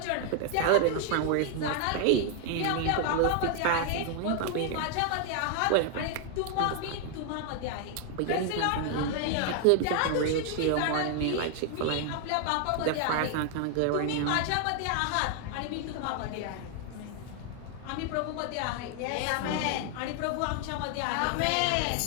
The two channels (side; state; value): both; different; correlation 0.00